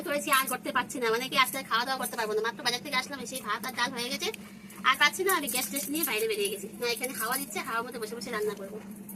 করেছি, আর করতে পারছি না। মানে কি আজকে খাওয়া দাওয়া করতে পারবো না। মাত্র বাজার থেকে আসলাম, সেই ভাত আর ডাল হয়ে গেছে, আর পাচ্ছি না। আমি গ্যাস টেস্ট নিয়ে বাইরে বেরিয়ে গেছি। না এখানে হাওয়া দিচ্ছে, হাওয়ার মধ্যে বসে বসে রান্না করবো।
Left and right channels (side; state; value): both; identical; correlation 1.00